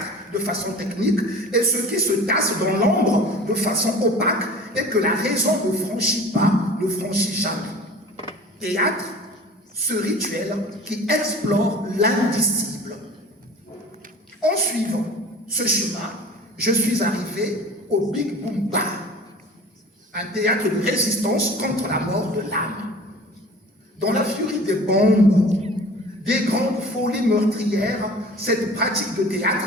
de façon technique et ce qui se tasse dans l'ombre de façon opaque et que la raison ne franchit pas, ne franchit jamais. Théâtre, ce rituel qui explore l'indicible. En suivant ce chemin, je suis arrivé au Big Boom Bar, un théâtre de résistance contre la mort de l'âme. Dans la furie des bombes, des grandes folies meurtrières, cette pratique de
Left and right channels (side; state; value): both; normal; correlation 0.42